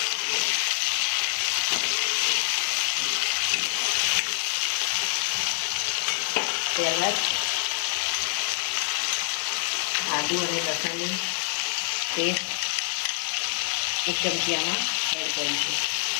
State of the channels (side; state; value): right; silent; digital silence